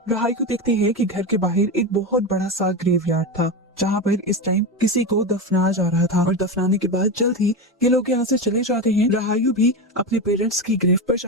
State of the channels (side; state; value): both; normal; correlation 0.18